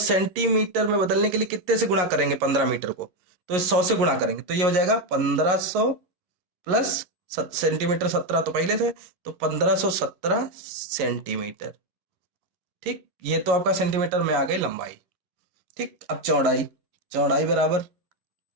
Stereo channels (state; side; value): late; left; 11 ms